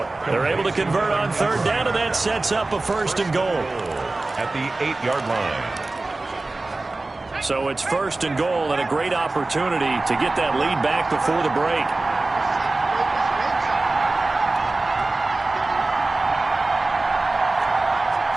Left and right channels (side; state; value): left; quieter; 3.2 dB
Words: They're able to convert on 3rd down, and that sets up a 1st and goal. At the 8-yard line. So it's 1st and goal, and a great opportunity to get that lead back before the break.